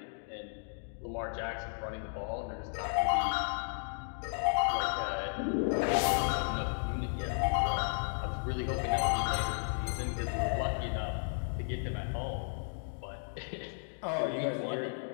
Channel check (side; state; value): right; silent; digital silence